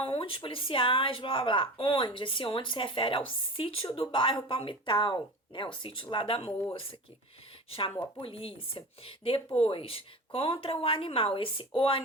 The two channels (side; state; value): both; normal; correlation 0.33